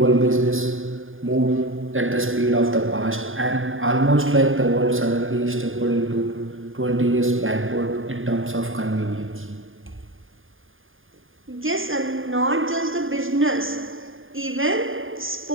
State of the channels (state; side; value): late; left; 0.59 ms